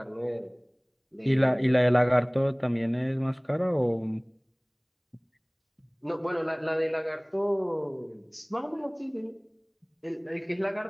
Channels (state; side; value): identical; both; correlation 1.00